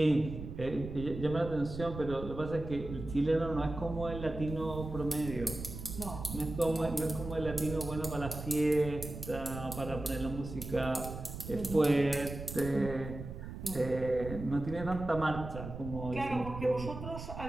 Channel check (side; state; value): right; noise; rumble, 9 dB below the sound